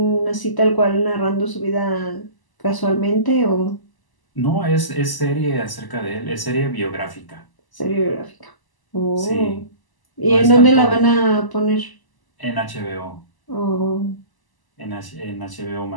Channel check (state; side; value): late; right; 1.0 ms